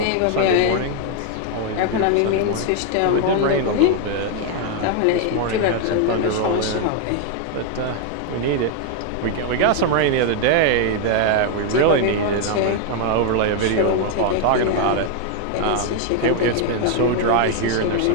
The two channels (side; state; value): both; different; correlation 0.00